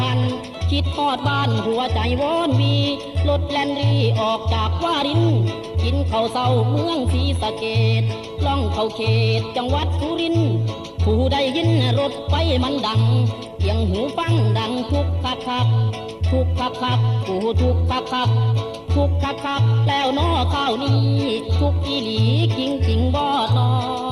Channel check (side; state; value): both; identical; correlation 1.00